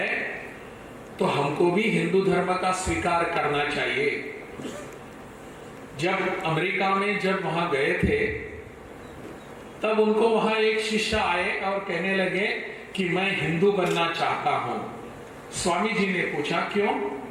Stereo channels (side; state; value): both; identical; correlation 1.00